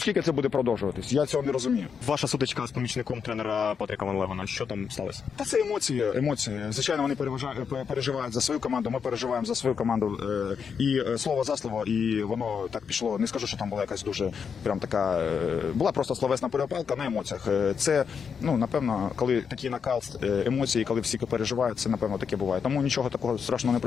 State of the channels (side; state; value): right; quieter; 6.5 dB